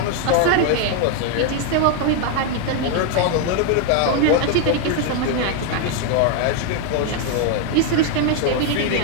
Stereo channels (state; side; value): different; both; correlation 0.01